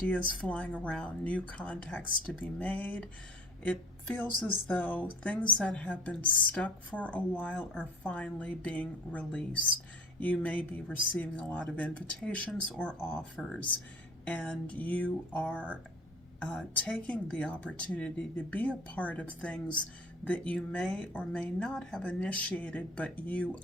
flying around, new contacts to be made. It feels as though things that have been stuck for a while are finally being released. You may be receiving a lot of invitations or offers, and you are taking the opportunity to be a part of things that you may or may not have initiated, but you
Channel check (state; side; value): normal; both; correlation 0.45